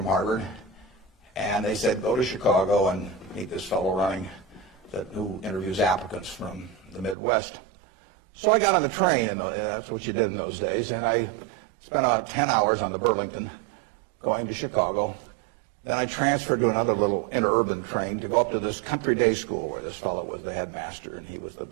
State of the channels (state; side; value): drops out; left; at 7.2 s